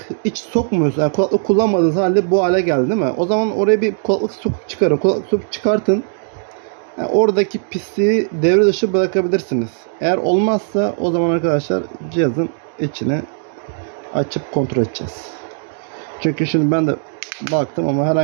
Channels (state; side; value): silent; left; digital silence